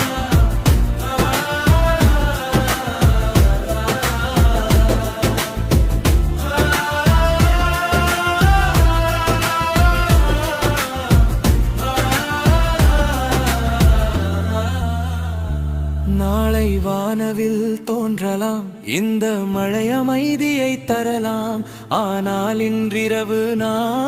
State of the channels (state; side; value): identical; both; correlation 1.00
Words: நாளை வானவில் தோன்றலாம், இந்த மழை அமைதியை தரலாம். ஆனால் இன்றிரவு